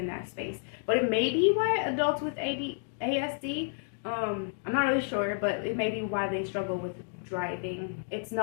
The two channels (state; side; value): silent; right; 57 dB below the other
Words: that space. But it may be why adults with ASD, I'm not really sure, but it may be why they struggle with driving. It's